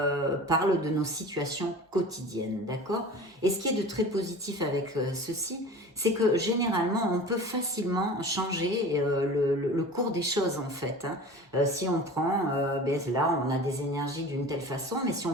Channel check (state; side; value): normal; both; correlation 0.38